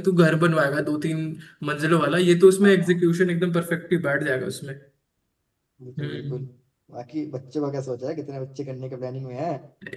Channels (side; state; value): both; identical; correlation 1.00